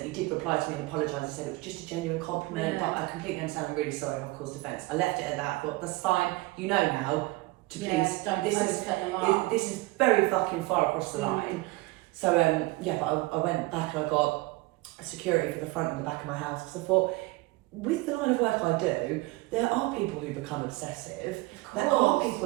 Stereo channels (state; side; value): quieter; left; 21.5 dB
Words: He did reply to me and apologise. He said it was just a genuine compliment, but I completely understand. I'm really sorry I've caused offence. I left it at that. I thought, that's fine. You know now to please. This is very fucking far across the line. So but I went back and I got security for the front and the back of my house because I thought, with the line of work I do, there are people who become obsessive. There are